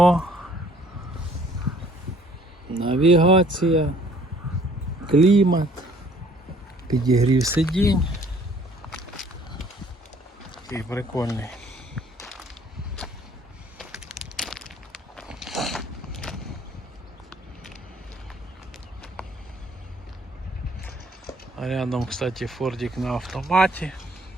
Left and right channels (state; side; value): normal; both; correlation 0.58